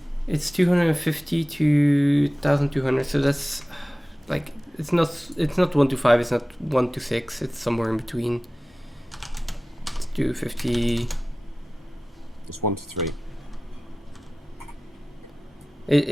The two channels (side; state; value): both; normal; correlation 0.97